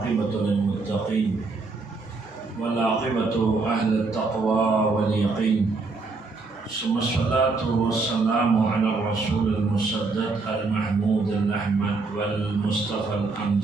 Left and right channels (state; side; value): quieter; left; 3.9 dB